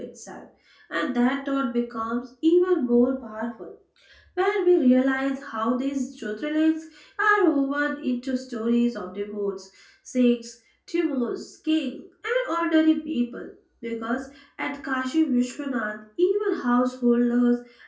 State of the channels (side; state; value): both; identical; correlation 1.00